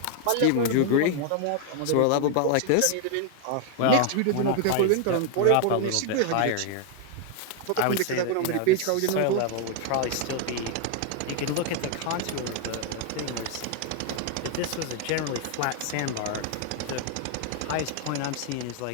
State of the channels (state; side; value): different; both; correlation 0.00